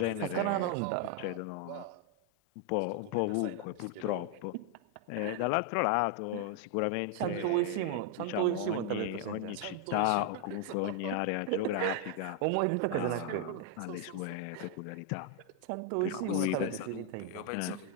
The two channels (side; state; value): both; different; correlation 0.00